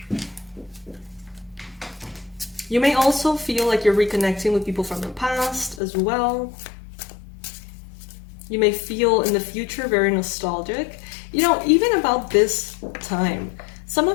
You may also feel like you're reconnecting with people from the past as well. You may feel in the future very nostalgic. You know, even about this time, some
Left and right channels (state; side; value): drops out; right; at 5.8 s